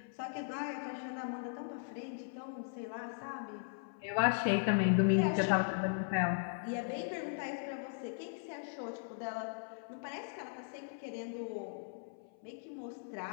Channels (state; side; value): silent; right; 52 dB below the other